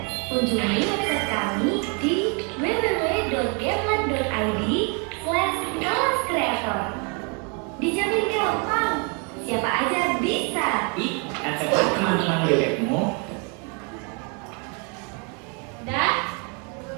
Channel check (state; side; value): quieter; left; 35.5 dB